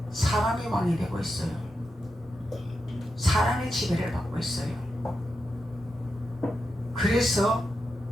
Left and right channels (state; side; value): normal; both; correlation 0.87